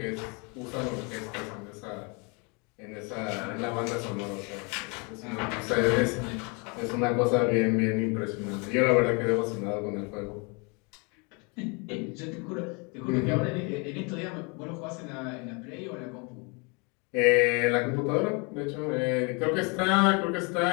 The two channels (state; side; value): quieter; right; 31.8 dB